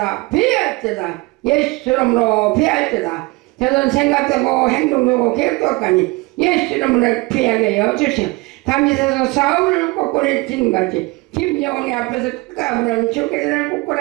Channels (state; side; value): quieter; left; 24.0 dB